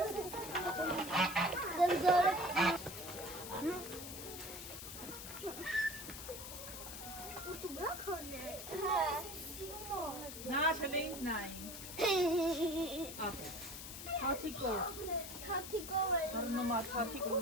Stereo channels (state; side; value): noise; left; hiss, 9 dB below the sound